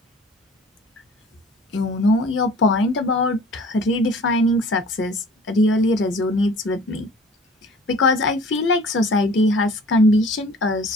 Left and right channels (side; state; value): both; normal; correlation 0.48